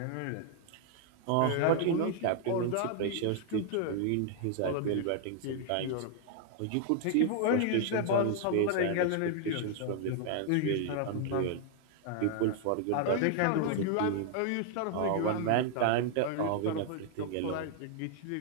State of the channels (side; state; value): both; different; correlation 0.00